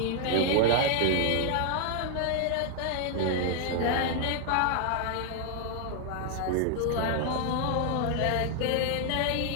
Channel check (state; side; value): different; both; correlation 0.00